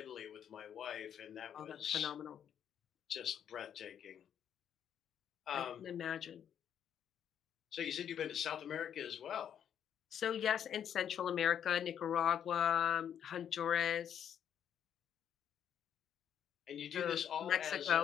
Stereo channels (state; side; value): quieter; right; 9.1 dB